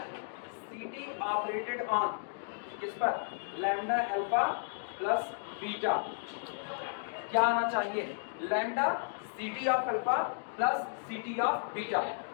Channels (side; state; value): right; silent; digital silence